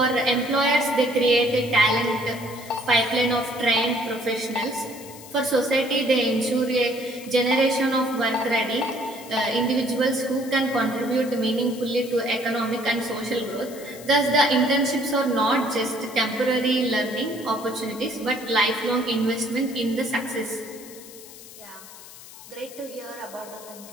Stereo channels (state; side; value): noise; left; hiss, 17 dB below the sound